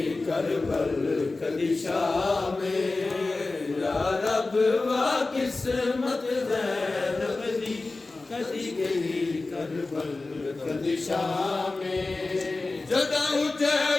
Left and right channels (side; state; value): right; quieter; 3.4 dB